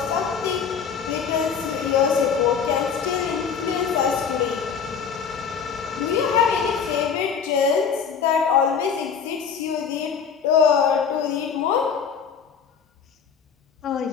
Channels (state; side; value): quieter; right; 6.6 dB